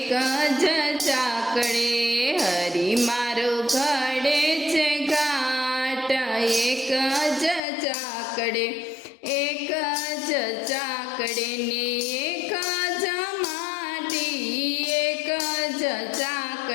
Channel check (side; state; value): right; drops out; at 7.6 s